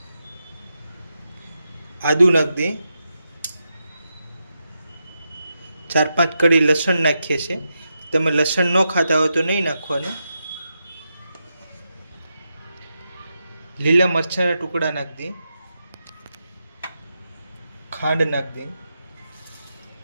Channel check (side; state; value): both; inverted; correlation -0.86